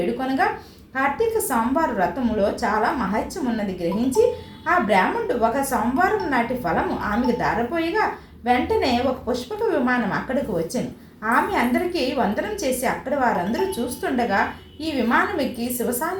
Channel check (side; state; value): both; identical; correlation 1.00